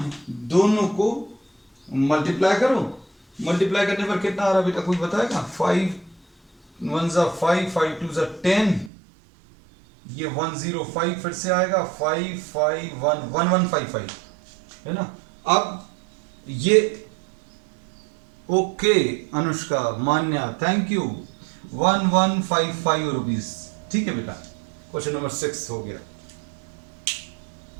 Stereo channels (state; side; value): drops out; left; at 8.9 s